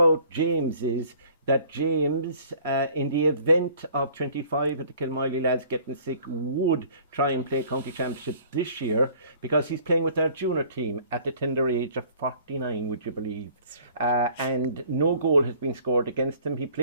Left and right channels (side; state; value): both; inverted; correlation -0.53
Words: James is that James, in the event of 25 of the Kilmiley lads getting sick, would try and play county championship this year because he's playing with our junior team at the tender age of 49, would you believe? And no goal has been scored against him. He